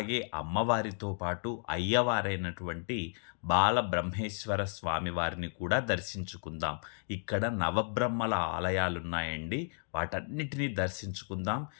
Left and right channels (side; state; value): right; silent; 56 dB below the other